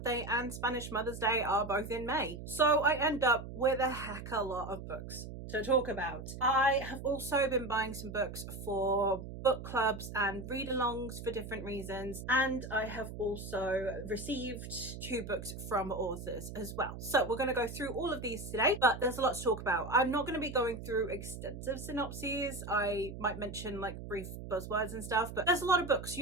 and Spanish Mother's Day are both in May. So I end up with a heck of a lot of books to talk about. I have also been buying some books for book clubs and read-alongs for different reasons, and I have also received 2 books from authors as well. So we're going to go through all of these today, but there's a lot to talk about. I'm not going to be going through extensive synopses. I might mention like brief buzzwords and stuff, but there's a lot of books.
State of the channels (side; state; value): right; noise; hum, 10 dB below the sound